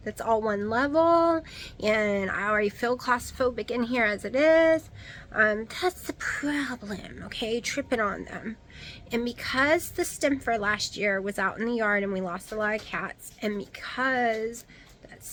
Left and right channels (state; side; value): identical; both; correlation 1.00